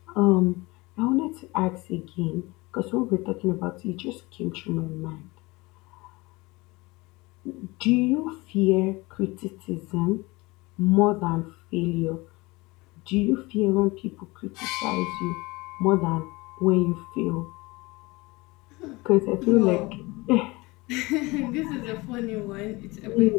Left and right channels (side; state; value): right; quieter; 23.0 dB